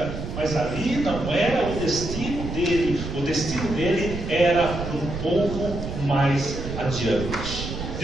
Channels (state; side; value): noise; right; rumble, 6 dB below the sound